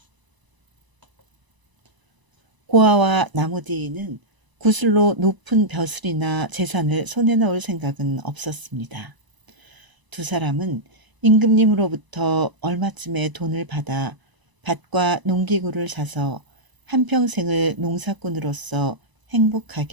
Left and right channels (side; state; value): left; late; 1.0 ms